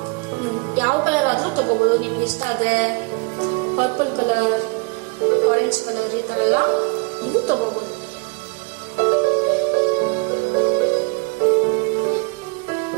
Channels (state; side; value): quieter; left; 30.7 dB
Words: ಯಾವ ಕಲರ್ ಆದ್ರೂ ತಗೋಬಹುದು. ನಿಮ್ಗೆ ಇಷ್ಟ ಆದ್ರೆ ಪರ್ಪಲ್ ಕಲರ್, ಆರೆಂಜ್ ಕಲರ್ ಈ ತರ ಎಲ್ಲ ನೀವು ತಗೋಬಹುದು.